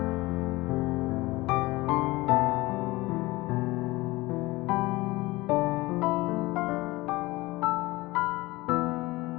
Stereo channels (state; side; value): quieter; right; 20.6 dB